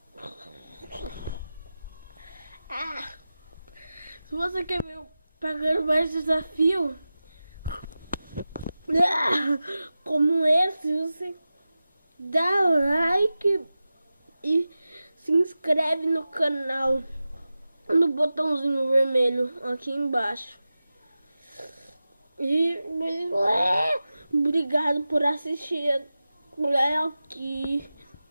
Ah. Se você quer ver pagando mais desafio como esse, você dá like e se inscreve no canal no botãozinho vermelho aqui embaixo. E obrigado por assistir aqui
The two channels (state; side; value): inverted; both; correlation -0.94